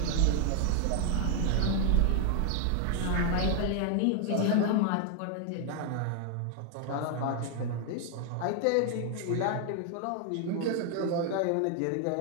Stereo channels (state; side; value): different; both; correlation 0.00